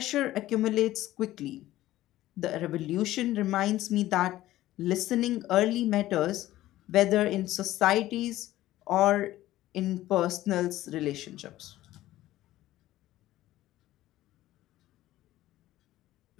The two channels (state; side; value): quieter; right; 15.3 dB